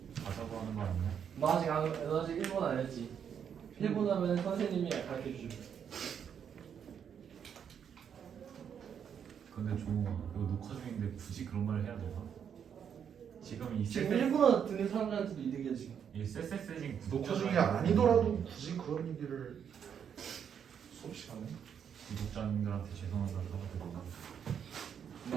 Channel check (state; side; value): quieter; left; 8.0 dB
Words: 가자고 하는 거 아니야? 너 아직 일본 안 했지? 일본 하면 선생님이 가르쳐 주죠. 근데 종호가 이거 녹화 중인데 굳이 그런 말을 해야 되나? 지금 이 지금 쎄쎄 일본어 듣는 사람들한테도 이득이야 지금. 이 쎄쎄쎄진 녹화 중이 아니더라도 굳이 그런 얘기를 수업 시간에? 구독자님들한테 죄송하다고 하고